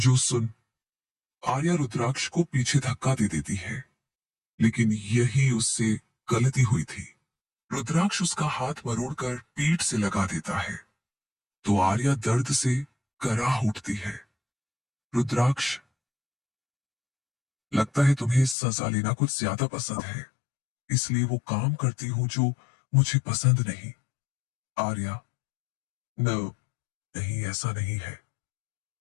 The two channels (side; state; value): right; drops out; at 18.6 s